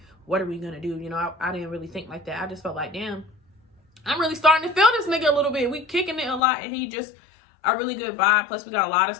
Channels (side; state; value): right; drops out; at 6.4 s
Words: gonna do? You know, I didn't really think like that. I just felt like, damn, I'm really starting to feel this nigga a little bit. We kicking it a lot, and he just a really good vibe. Plus, we got a lot of